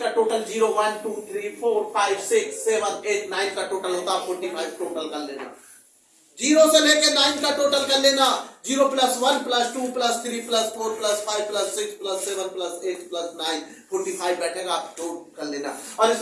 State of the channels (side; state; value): both; identical; correlation 1.00